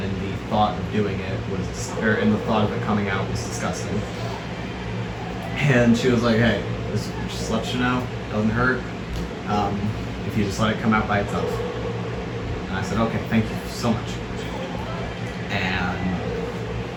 and the thought of doing it was, and the thought of it coming out was disgusting. And she was like, hey, just let you know, it doesn't hurt if you just let it come out by itself. And I said, okay, thank you so much. And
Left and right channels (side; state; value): both; identical; correlation 1.00